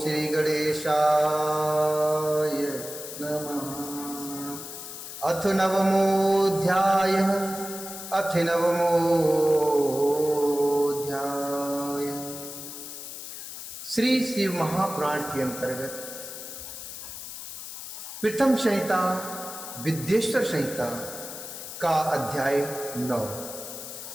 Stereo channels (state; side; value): noise; left; hiss, 10 dB below the sound